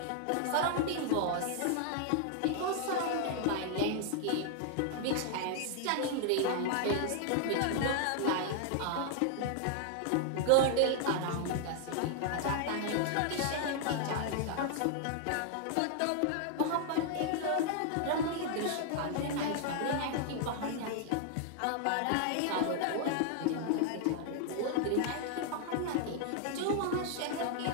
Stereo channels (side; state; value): both; different; correlation 0.00